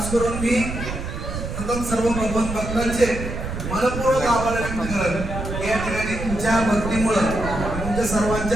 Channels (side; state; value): right; noise; rumble, 6 dB below the sound